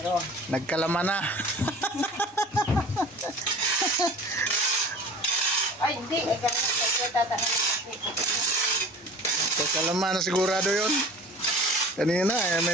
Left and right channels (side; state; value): both; normal; correlation 0.41